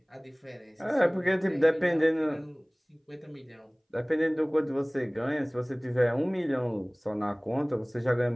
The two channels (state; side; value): identical; both; correlation 1.00